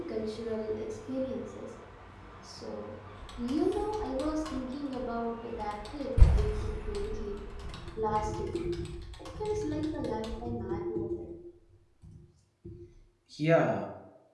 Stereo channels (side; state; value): both; identical; correlation 1.00